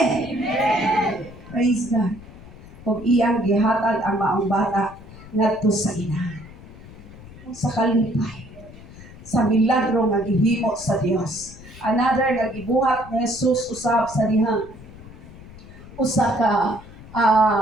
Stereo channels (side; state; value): left; noise; rumble, 18 dB below the sound